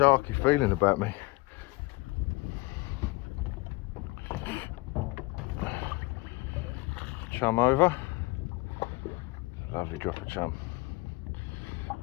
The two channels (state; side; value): quieter; right; 23.7 dB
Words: feeling about me. Chum over. Lovely drop of chum.